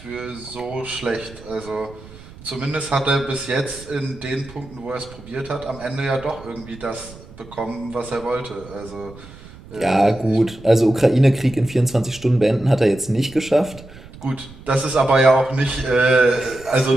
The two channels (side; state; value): right; noise; rumble, 19 dB below the sound